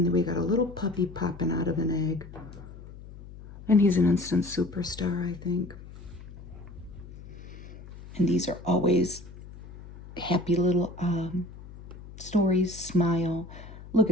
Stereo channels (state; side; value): noise; left; hum, 16 dB below the sound